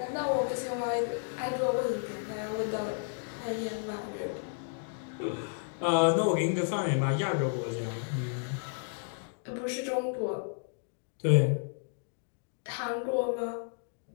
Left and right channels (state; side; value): silent; right; digital silence